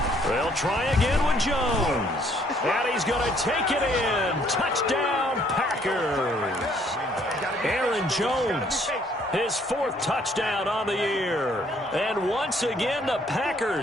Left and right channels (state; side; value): normal; both; correlation 0.64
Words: They'll try again with Jones. And he's going to take it in. Touchdown, Packers. Aaron Jones, his 4th touchdown on the year. And once again, the